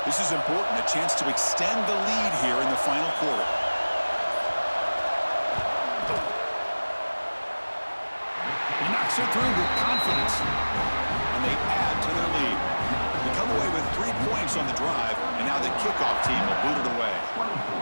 This is important, a chance to extend the lead here in the final quarter. He knocks it through with confidence. And they add to their lead. They come away with 3 points on the drive, and now the kickoff team will boot it away.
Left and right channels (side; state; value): both; inverted; correlation -1.00